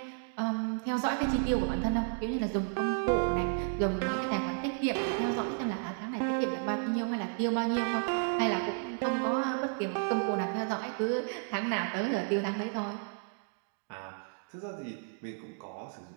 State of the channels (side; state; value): left; silent; 56 dB below the other